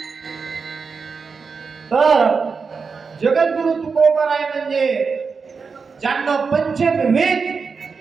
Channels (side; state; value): left; quieter; 5.1 dB